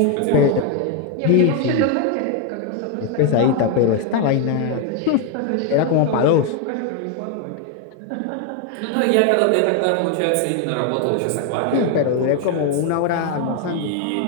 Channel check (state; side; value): different; both; correlation 0.01